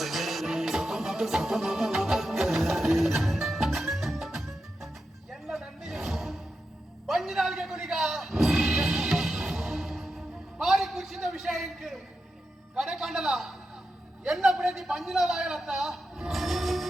என்ன நன்றி பஞ்சு நாளுக்கு குடிக்கா மாறி ಕುರ್ಚಿದ ವಿಷಯಕ್ಕೆ ಕಡೆ ಕಂಡಲ ಎನ್ನ ಪ್ರತಿ ಪಂಜಿನಾದ ಆಗಲತ್ತ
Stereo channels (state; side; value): normal; both; correlation 0.89